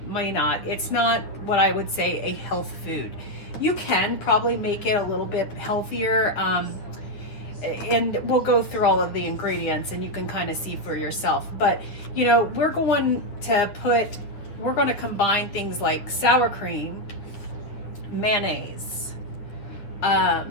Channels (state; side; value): late; right; 9.3 ms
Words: may not. It's not what I would say a health food. You can probably make it a little bit healthier, and we'll go through all of the ingredients and you can kind of see for yourself. But you know, we're going to combine things like sour cream, mayonnaise,